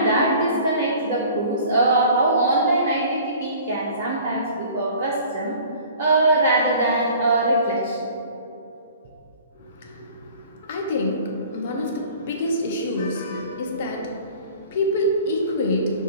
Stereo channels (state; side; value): inverted; both; correlation -0.47